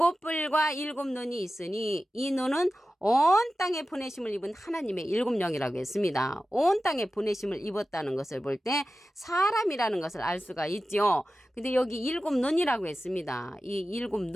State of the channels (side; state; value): both; normal; correlation 0.94